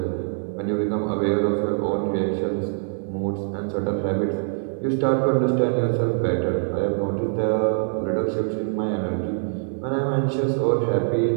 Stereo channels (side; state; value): left; silent; 63 dB below the other